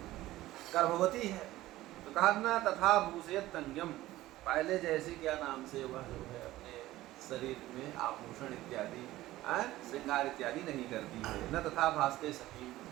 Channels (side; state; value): left; quieter; 16.2 dB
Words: गर्भवती है, तो कहा ना तथा भूषयत्यंगम, पहले जैसे क्या नाम से वह जो है अपने शरीर में आभूषण इत्यादि श्रृंगार इत्यादि नहीं करती है। न तथा भासते सखी,